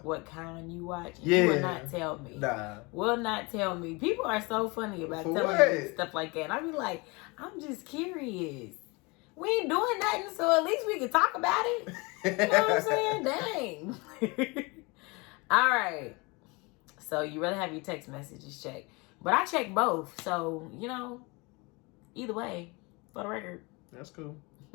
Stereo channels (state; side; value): quieter; right; 27.1 dB